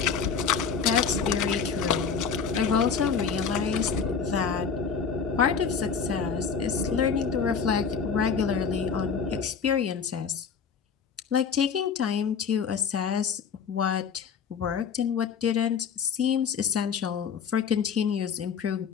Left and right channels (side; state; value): right; quieter; 6.3 dB